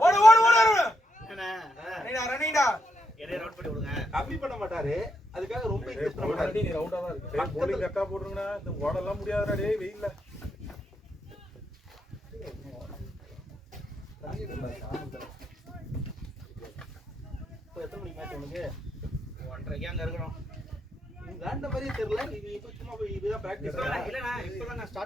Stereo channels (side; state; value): both; normal; correlation 0.79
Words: என்ன ரவுண்ட் பண்ணி விடுங்க கம்மி பண்ண மாட்டாரு அதுக்காக ரொம்ப இன்வெஸ்ட் பண்ண மாட்டாரு நீ ரவுண்டா தான் இருக்கு. போலிங் கரெக்டா போடுறீங்கடா. இந்த ஓடலாம் முடியாதுடா டேய் வெயில்ல. இப்போ எத்தனை மணிக்கு மேட்ச் உனக்கு 1:30 அங்க இருக்கணும். விளையாண்ட மாதிரியே தெரியல நீ இப்போ சும்மா போய் இதுதான் பிராக்டிஸ் இல்லண்ணா இப்பதான் நான்